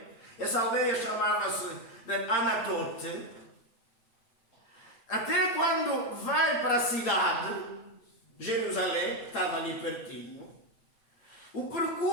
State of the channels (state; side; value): late; right; 8.7 ms